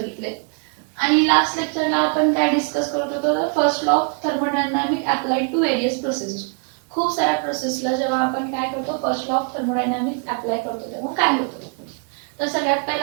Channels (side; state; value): left; quieter; 39.4 dB